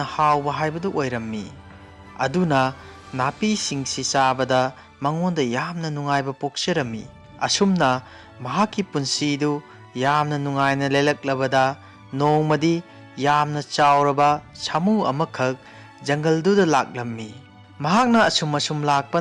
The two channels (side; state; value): both; identical; correlation 1.00